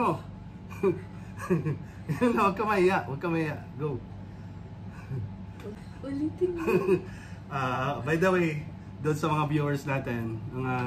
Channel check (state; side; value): identical; both; correlation 1.00